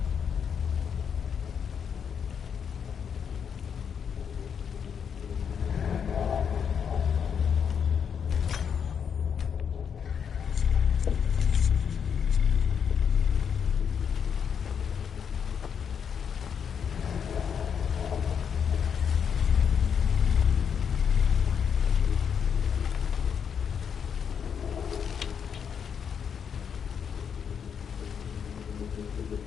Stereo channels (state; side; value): quieter; right; 7.3 dB